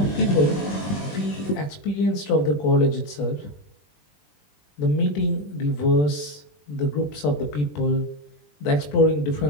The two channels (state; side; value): late; right; 20 ms